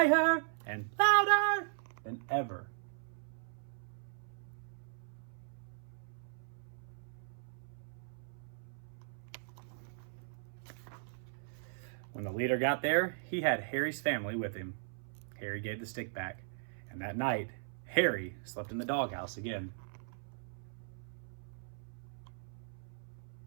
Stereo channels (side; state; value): left; silent; 52 dB below the other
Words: and louder than ever. When the leader got there, he had Harry's family with him. Harry gave the stick back, and that night, Harry slept in the doghouse again.